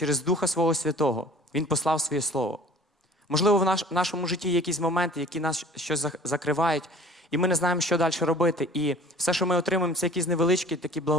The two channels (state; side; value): normal; both; correlation 0.48